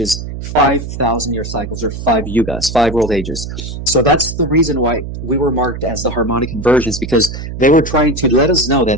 5,000-year cycles, or 5 yugas, 5 world ages. So that's the reason why we were marked as the harmonic convergence, because they were trying to let us know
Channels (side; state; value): right; noise; hum, 8 dB below the sound